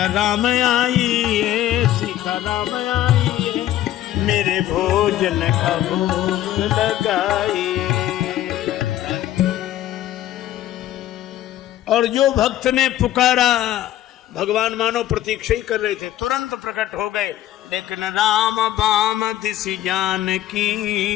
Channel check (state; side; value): quieter; right; 13.1 dB